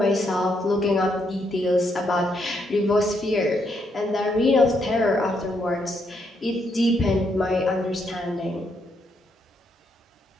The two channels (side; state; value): both; normal; correlation 0.76